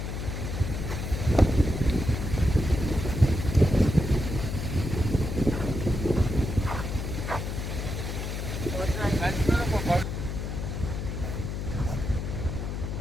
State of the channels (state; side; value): noise; left; hum, 4 dB below the sound